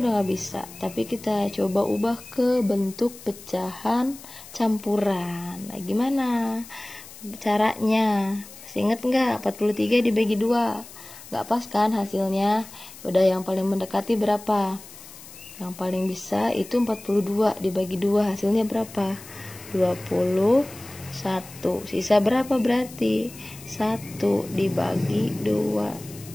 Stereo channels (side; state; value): left; noise; hiss, 17 dB below the sound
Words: udah nggak bisa, tapi kita coba ubah ke bentuk pecahan campuran. Nah gimana caranya? Masih inget nggak? 43 dibagi 2 nggak pas kan hasilnya? Udah yang paling mendekati berapa? Yang paling bisa itu 42 dibagi 2 hasilnya berapa? 21. Sisa berapa berarti? 1 dibagi